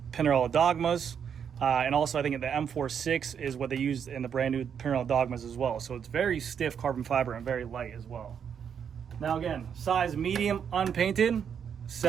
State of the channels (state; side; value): quieter; left; 7.7 dB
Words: Dogmas. And also I think the M46 is what they use in the brand new Pinarello Dogmas as well. So it's very stiff carbon fiber and very light as well. Now again, size medium unpainted,